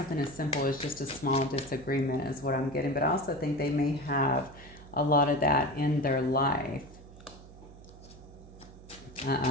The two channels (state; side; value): noise; right; hum, 19 dB below the sound